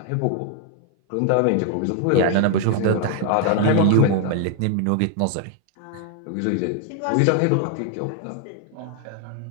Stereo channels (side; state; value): both; different; correlation 0.00